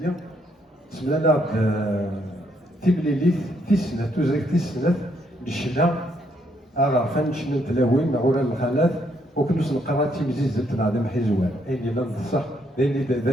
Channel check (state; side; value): normal; both; correlation 0.73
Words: سمى لنا تيبليليت تيسنه توزريك تيسنه الشنا عرفان شنو تلاوين مع ورا الخالات وكنوس نقرا تيمزيز تنعدم حيزوان اين لا نصح